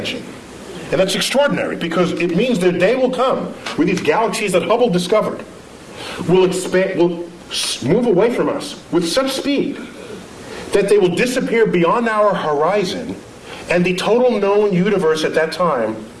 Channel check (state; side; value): identical; both; correlation 1.00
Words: And that's extraordinary, because it means the day will come where these galaxies that Hubble discovered will move away from us with such speed that they will disappear beyond our horizon, and the total known universe at that time